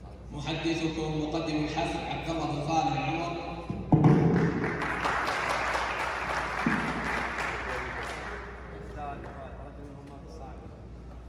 محدثكم مقدم الحفل عبد الله بن خالد العمر.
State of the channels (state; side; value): identical; both; correlation 1.00